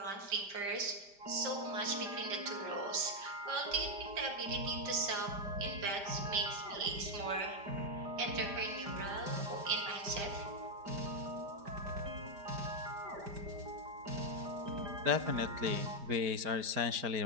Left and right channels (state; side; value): late; left; 5.0 ms